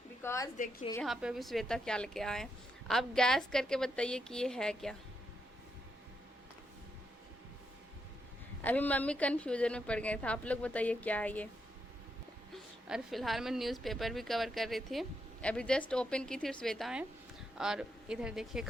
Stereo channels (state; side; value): normal; both; correlation 0.81